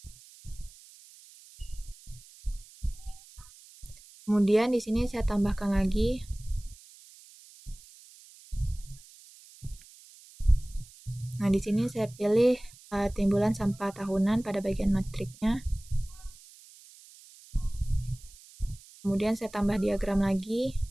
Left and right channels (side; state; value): right; noise; hiss, 22 dB below the sound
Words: Kemudian di sini saya tambahkan lagi Nah, di sini saya pilih timbulan sampah tahunan pada bagian matriknya. Kemudian saya tambah diagram lagi.